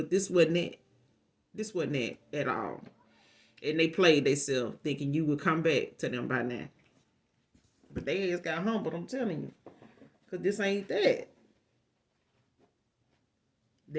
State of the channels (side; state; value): both; identical; correlation 1.00